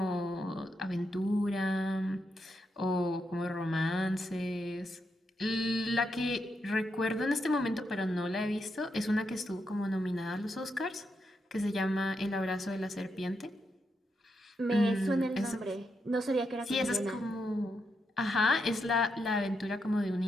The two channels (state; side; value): normal; both; correlation 0.83